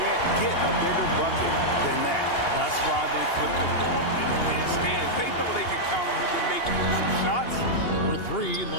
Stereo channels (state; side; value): late; right; 2.8 ms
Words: get a bigger bucket than that. That's why they put the ball in his hands. They know they can count on him to make some shots. For three,